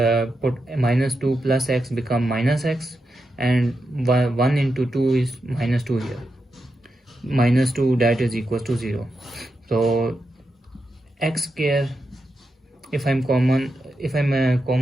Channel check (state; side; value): normal; both; correlation 0.87